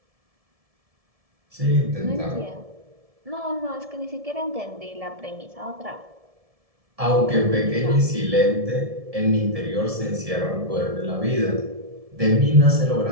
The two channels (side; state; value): left; late; 1.7 ms